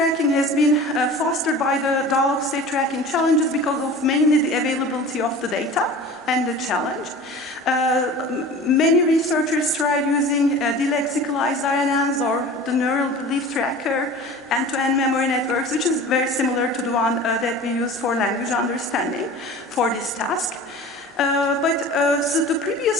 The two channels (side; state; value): both; normal; correlation 0.39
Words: has been fostered by the dialogue state tracking challenges because of mainly the availability of the data and the challenge. Many researchers tried using delexicalized RNNs or the neural belief tracker, end-to-end memory networks, which is very similar to the one that we use for language understanding for this task. So the